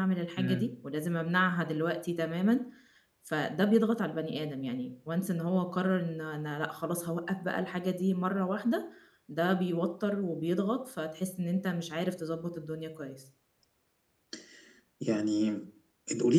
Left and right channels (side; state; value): both; identical; correlation 1.00